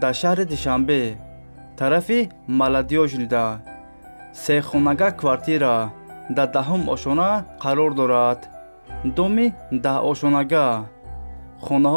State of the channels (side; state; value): both; inverted; correlation -1.00